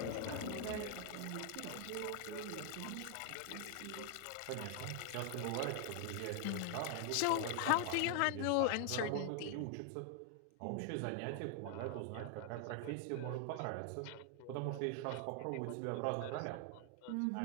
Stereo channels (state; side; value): different; both; correlation 0.00